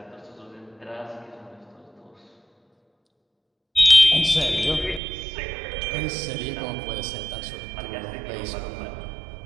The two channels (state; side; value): drops out; left; at 5.0 s